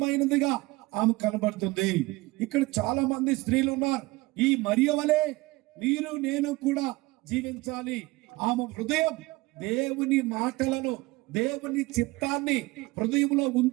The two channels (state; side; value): quieter; left; 21.7 dB